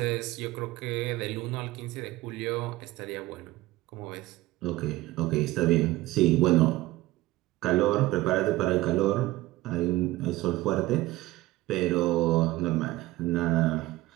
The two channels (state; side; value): quieter; left; 17.8 dB